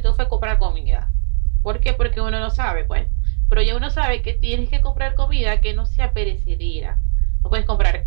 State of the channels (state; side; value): silent; left; digital silence